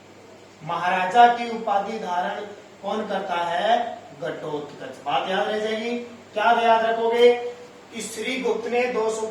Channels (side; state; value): both; identical; correlation 1.00